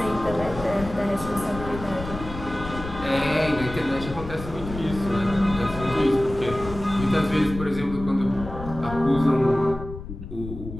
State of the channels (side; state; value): left; noise; rumble, 11 dB below the sound